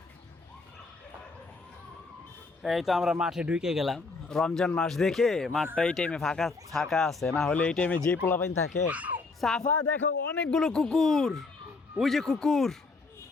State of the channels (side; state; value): right; quieter; 3.9 dB